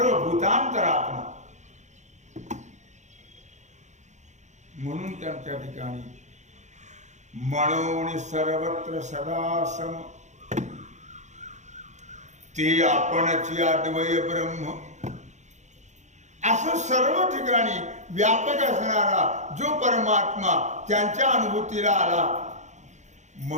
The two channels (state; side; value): late; left; 0.34 ms